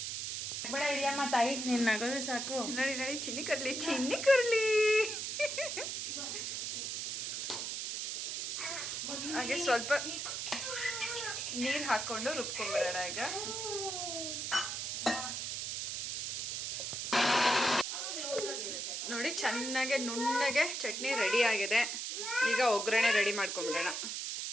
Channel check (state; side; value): noise; right; hiss, 3 dB below the sound